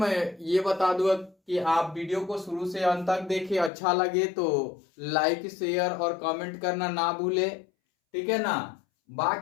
ये बता दूं कि आप वीडियो को शुरू से अंत तक देखें। अच्छा लगे तो लाइक शेयर और कमेंट करना ना भूले, ठीक है ना।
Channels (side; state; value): right; drops out; at 3.7 s